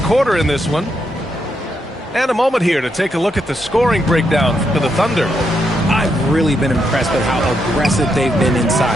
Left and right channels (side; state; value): both; normal; correlation 0.80